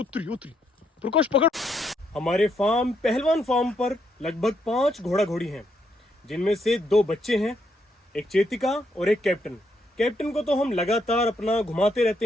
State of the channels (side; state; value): both; normal; correlation 0.76